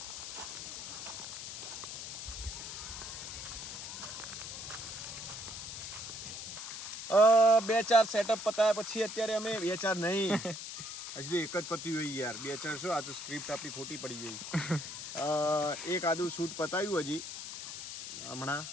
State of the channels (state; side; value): noise; left; hiss, 8 dB below the sound